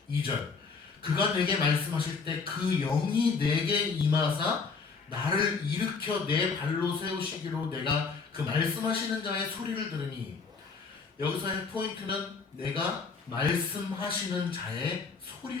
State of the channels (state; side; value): quieter; right; 4.9 dB